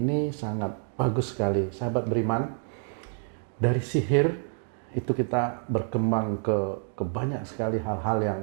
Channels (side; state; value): left; silent; 59 dB below the other